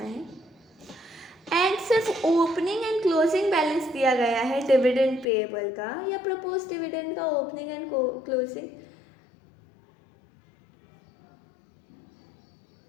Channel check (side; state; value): right; drops out; at 5.2 s